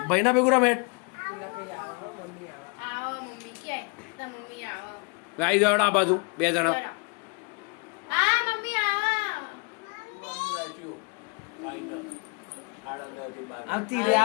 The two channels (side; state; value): right; quieter; 32.4 dB